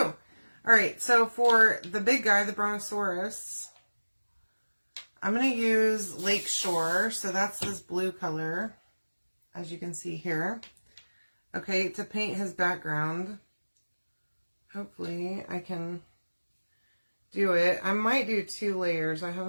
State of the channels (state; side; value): inverted; both; correlation -1.00